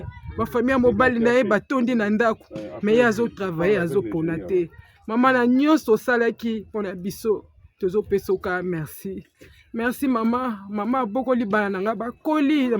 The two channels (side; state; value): both; identical; correlation 1.00